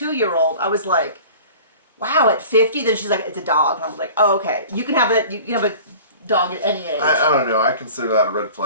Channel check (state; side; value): inverted; both; correlation -0.42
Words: I was like, wow, at 50? Then she's like, it's a dog. And I was like, oh, okay. You can have dog at any age. I don't know. I consider that a red